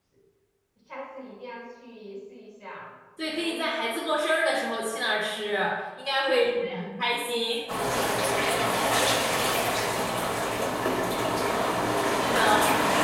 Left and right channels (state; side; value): identical; both; correlation 1.00